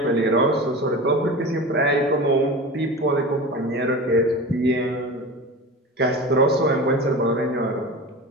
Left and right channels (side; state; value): both; normal; correlation 0.31